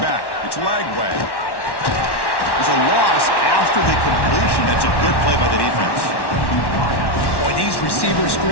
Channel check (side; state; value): right; late; 1.1 ms